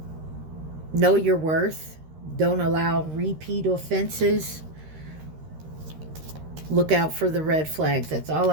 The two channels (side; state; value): left; late; 13 ms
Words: Know your worth. Don't allow repeat offenses. Look out for the red flags. That's all